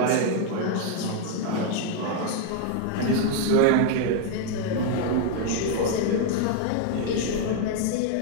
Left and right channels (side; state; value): both; different; correlation 0.00